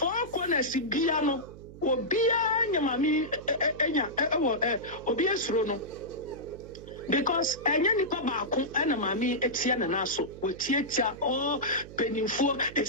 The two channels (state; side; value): noise; right; hum, 17 dB below the sound